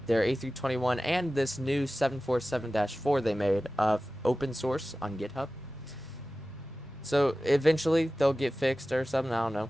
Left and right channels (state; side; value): normal; both; correlation 0.96